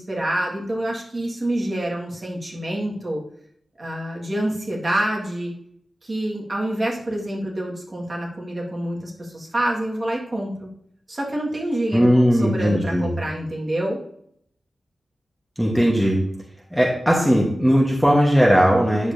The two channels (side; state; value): both; normal; correlation 0.96